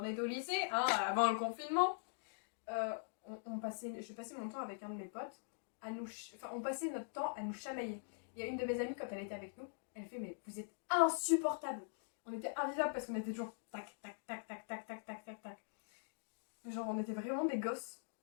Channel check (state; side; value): silent; right; digital silence